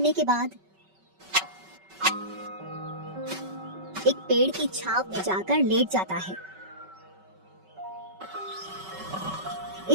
के बाद एक पेड़ की छांव में जाकर लेट जाता है।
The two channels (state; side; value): late; left; 5.3 ms